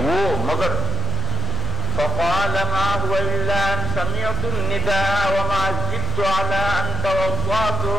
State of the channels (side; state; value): right; noise; hum, 16 dB below the sound